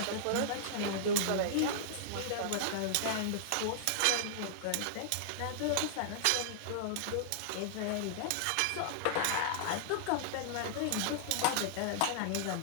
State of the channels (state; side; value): different; both; correlation -0.02